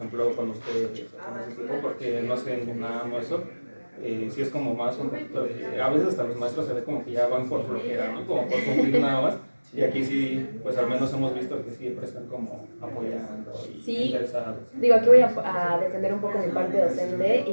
cuando usted con ese tipo, porque no hacen nada no eso. Sí es como más un poquito de... A veces hasta los maestros se ve como que ya van por flojera, ¿no? Como por cumplir nada más. Y aquí sí, pues al menos hemos visto que siempre están como apoyando y Sí, interesados. digo, aquí voy a defender un poco mi parte docente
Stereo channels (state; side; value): inverted; both; correlation -1.00